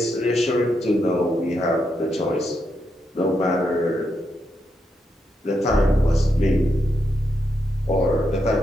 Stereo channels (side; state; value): both; normal; correlation 0.82